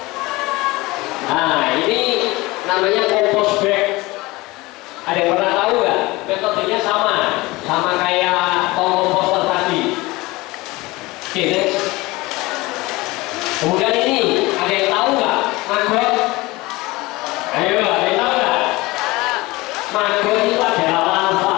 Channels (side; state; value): right; quieter; 21.4 dB